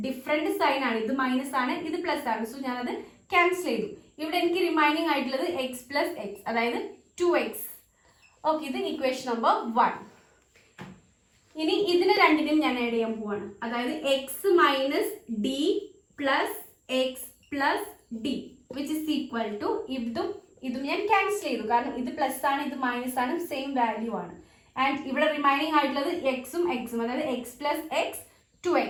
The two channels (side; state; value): both; identical; correlation 1.00